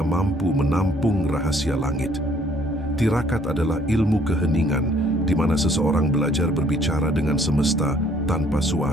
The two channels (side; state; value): both; normal; correlation 0.62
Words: mampu menampung rahasia langit. Tirakat adalah ilmu keheningan, di mana seseorang belajar berbicara dengan semesta tanpa